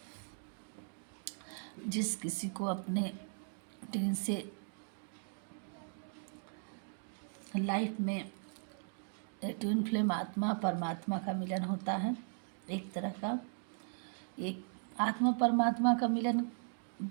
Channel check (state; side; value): silent; left; 52 dB below the other